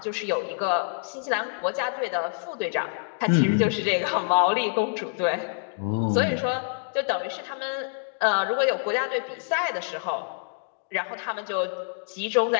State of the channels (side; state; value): right; silent; digital silence